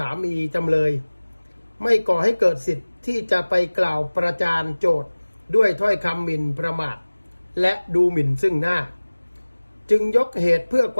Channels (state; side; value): inverted; both; correlation -1.00